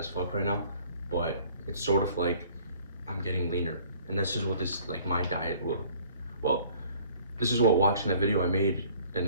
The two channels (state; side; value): inverted; both; correlation -0.54